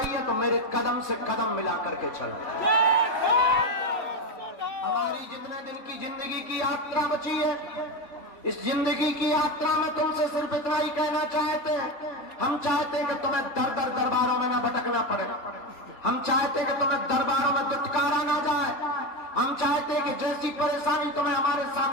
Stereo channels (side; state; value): right; late; 3.5 ms